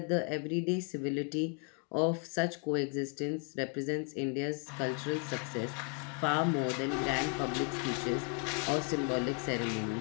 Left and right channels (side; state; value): right; quieter; 39.6 dB